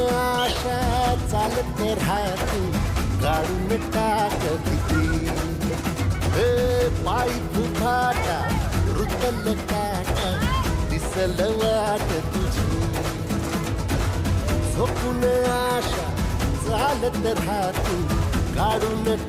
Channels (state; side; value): identical; both; correlation 1.00